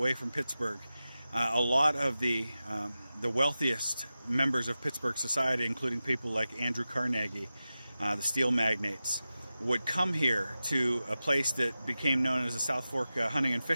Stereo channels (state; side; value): inverted; both; correlation -0.94